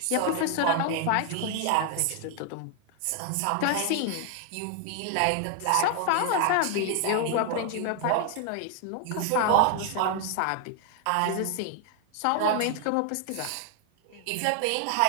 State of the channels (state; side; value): different; both; correlation 0.00